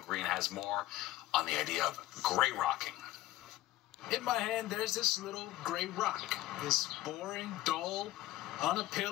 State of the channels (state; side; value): quieter; right; 16.4 dB